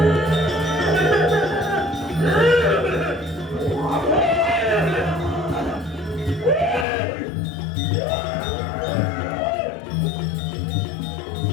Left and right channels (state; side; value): drops out; right; at 6.9 s